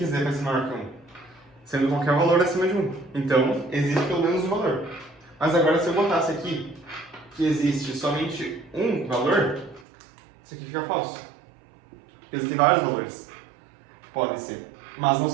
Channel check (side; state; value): left; drops out; at 9.9 s